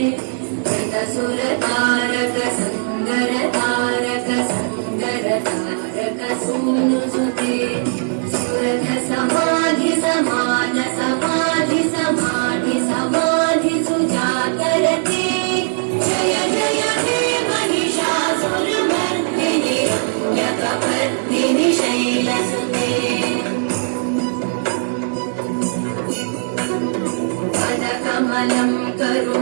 कृतसुरतारक सङ्गरतारक सङ्गरतारक सूनुसुते सुरथ समाधि समान समाधि समाधि समाधि सुजातरते जय जय हे महिषासुरमर्दिनि रम्यकपर्दिनि शैलसुते पदकमलं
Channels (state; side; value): silent; left; digital silence